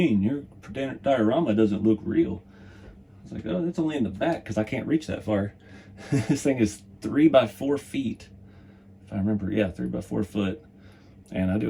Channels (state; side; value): identical; both; correlation 1.00